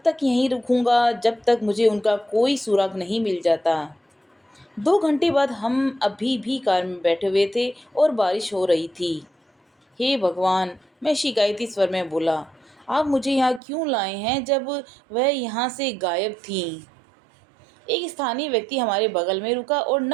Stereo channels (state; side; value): drops out; left; at 13.6 s